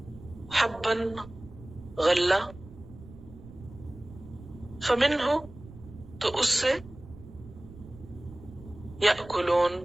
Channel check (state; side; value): noise; right; rumble, 17 dB below the sound